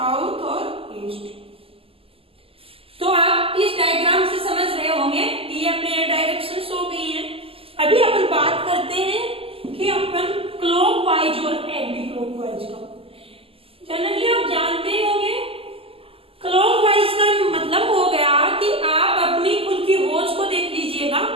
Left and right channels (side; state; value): left; late; 0.27 ms